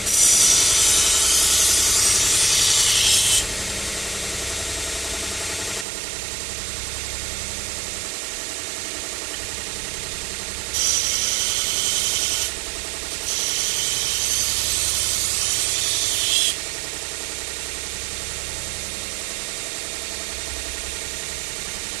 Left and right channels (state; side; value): drops out; left; at 5.9 s